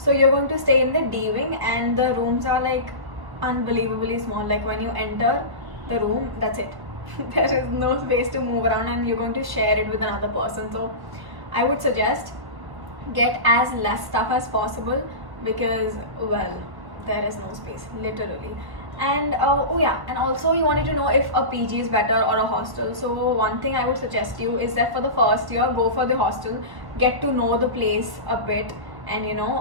you're going to stay in the D wing, and the rooms are like unbelievably small. Like when you enter the room, that's it. There is no space to move around, and you're going to share it with another person. So I would suggest get as less stuff as possible, because well, there is no space literally. And oh yeah, and also you wanted to know if a PG is better or a hostel. So one thing I would suggest you is that for the first year, go for the hostel, get to know the place a bit, and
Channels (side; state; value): left; late; 1.3 ms